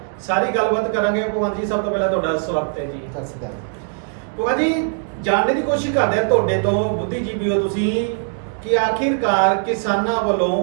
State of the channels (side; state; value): left; silent; digital silence